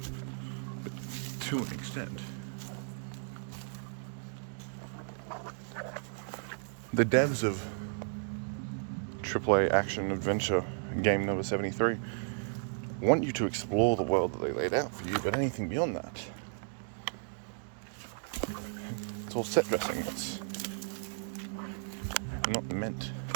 but to an extent. The devs of AAA action adventure game number 73 want you to explore the world that they laid out for you, but anything beyond that, it's all set dressing. It's not meant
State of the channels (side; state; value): left; silent; digital silence